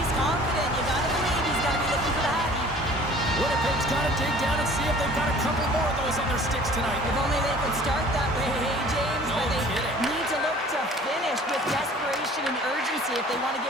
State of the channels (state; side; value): normal; both; correlation 0.50